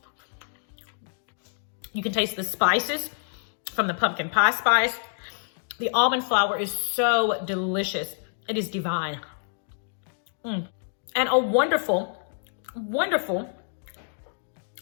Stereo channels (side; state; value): right; silent; digital silence